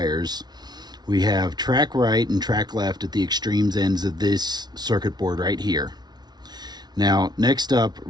we have track right and track left at the extremes ends of this circuit board right here. Now, next up,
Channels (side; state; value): left; late; 0.20 ms